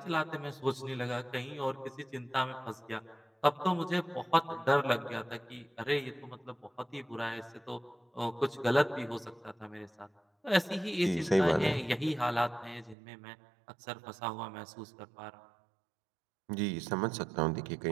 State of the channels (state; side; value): drops out; left; at 13.0 s